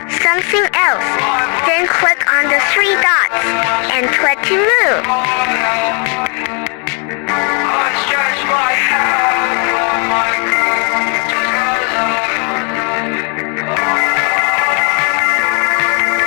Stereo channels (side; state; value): right; quieter; 36.2 dB